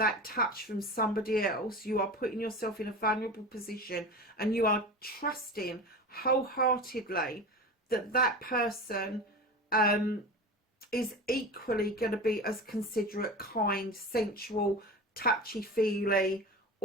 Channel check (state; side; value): normal; both; correlation 0.30